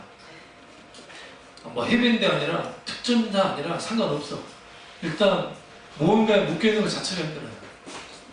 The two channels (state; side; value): identical; both; correlation 1.00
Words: 해병대 아니라 특전사 아니라 상관없어. 일단 무언가에 묶여있는 것 자체가 힘들어요.